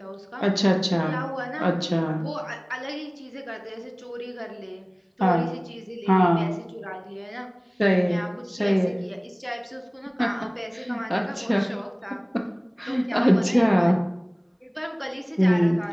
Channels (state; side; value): identical; both; correlation 1.00